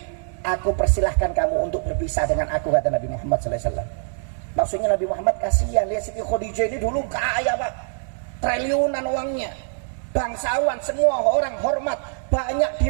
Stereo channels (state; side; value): silent; left; 63 dB below the other